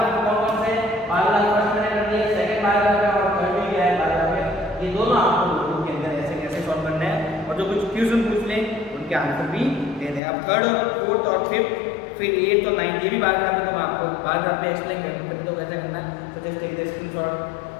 कौन कौन से, बार ग्राफ फर्स्ट मैंने कर दिया, सेकंड बार ग्राफ है और थर्ड भी है बार ग्राफ है, ये दोनों आपको नोटबुक के अंदर ऐसे कैसे सॉल्व करना है, और जो कुछ क्वेश्चन पूछ लें उनके आंसर भी दे दें। अब थर्ड और फोर्थ और फिफ्थ फिर 8 और 9 ये भी बार ग्राफ है, तो मैं आपको बार ग्राफ पे एक्सप्लेन करते तो कैसे करना है। So just take the screenshot.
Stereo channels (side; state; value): right; drops out; at 10.2 s